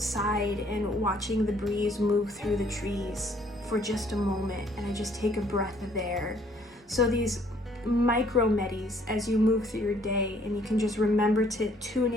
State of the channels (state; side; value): normal; both; correlation 0.62